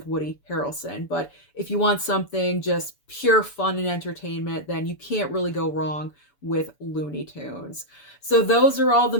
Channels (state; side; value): late; right; 7.0 ms